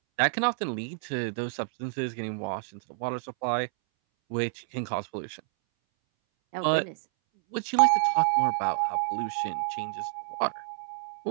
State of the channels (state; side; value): silent; left; 59 dB below the other